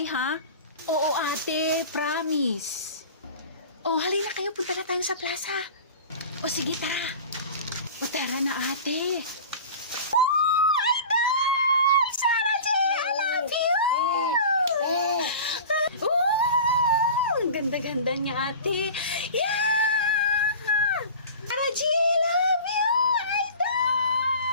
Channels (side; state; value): both; inverted; correlation -0.37